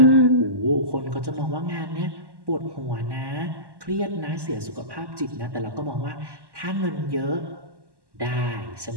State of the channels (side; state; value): left; late; 1.1 ms